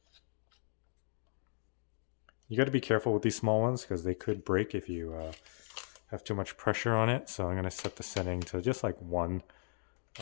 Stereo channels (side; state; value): right; silent; digital silence